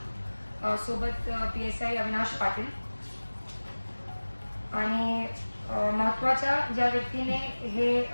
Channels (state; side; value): inverted; both; correlation -1.00